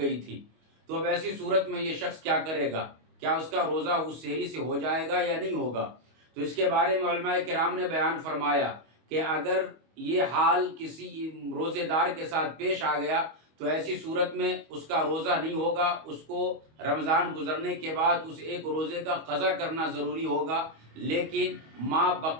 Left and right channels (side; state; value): left; late; 25 ms